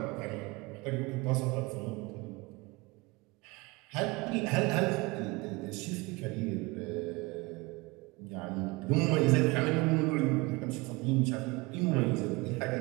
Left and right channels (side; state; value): left; quieter; 24.4 dB